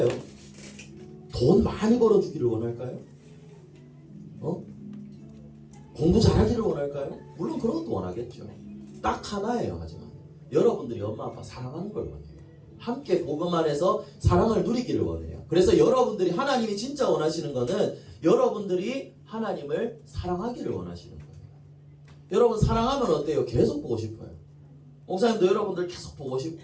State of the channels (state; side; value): identical; both; correlation 1.00